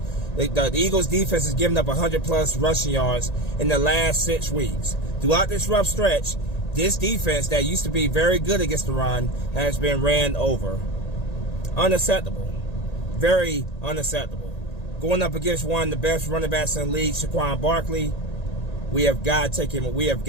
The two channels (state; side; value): late; right; 1.8 ms